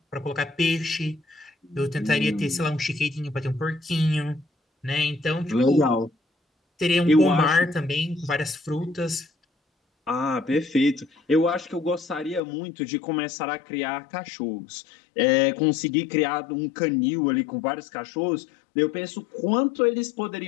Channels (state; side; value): drops out; right; at 12.4 s